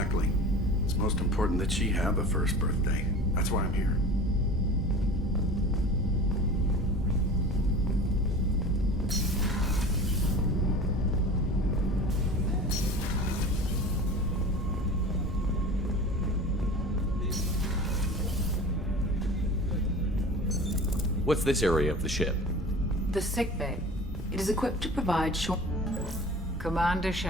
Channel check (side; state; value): both; normal; correlation 0.38